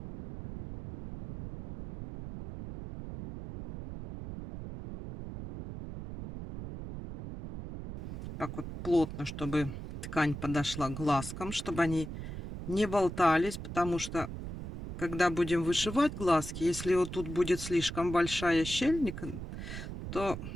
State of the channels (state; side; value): noise; right; rumble, 8 dB below the sound